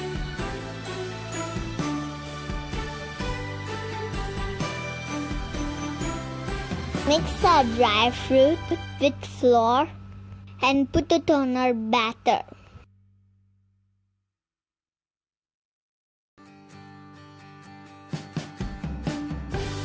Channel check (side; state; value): both; identical; correlation 1.00